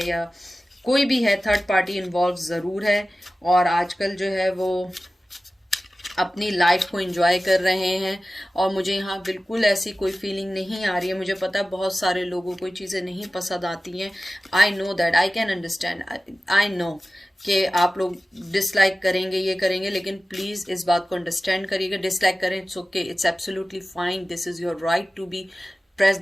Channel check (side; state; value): both; normal; correlation 0.96